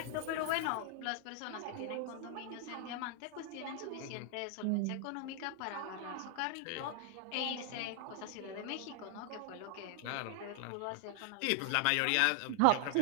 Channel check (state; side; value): different; both; correlation 0.00